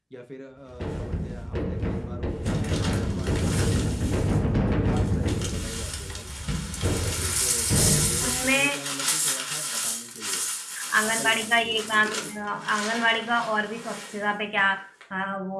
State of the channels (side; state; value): both; identical; correlation 1.00